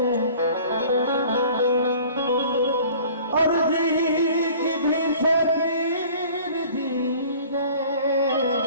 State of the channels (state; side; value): inverted; both; correlation -0.48